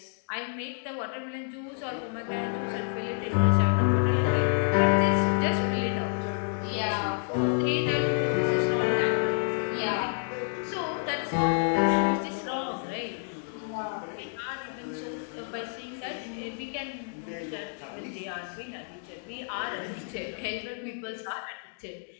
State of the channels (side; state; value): right; silent; digital silence